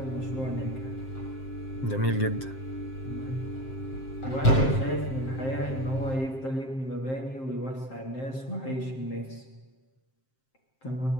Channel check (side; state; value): right; late; 7.6 ms